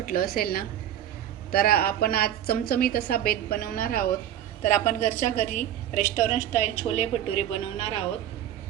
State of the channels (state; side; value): quieter; left; 11.2 dB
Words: असेल ना. तर आपण आज चमचमीत असा बेत बनवणार आहोत. तर आपण घरच्या घरी रेस्टॉरंट स्टाईल छोले भटुरे बनवणार आहोत.